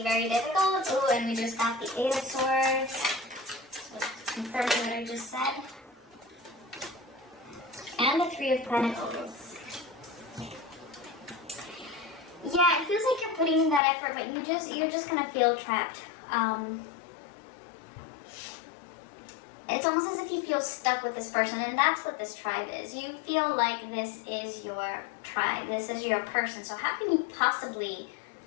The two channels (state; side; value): drops out; right; at 13.8 s